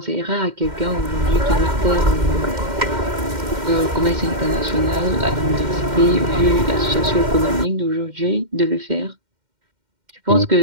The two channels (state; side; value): late; left; 2.1 ms